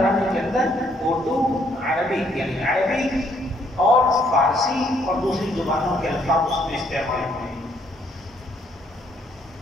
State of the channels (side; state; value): both; normal; correlation 0.69